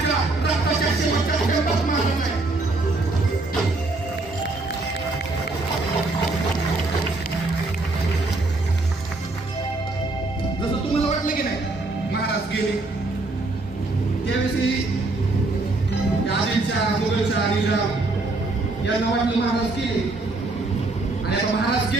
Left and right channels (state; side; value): quieter; left; 3.2 dB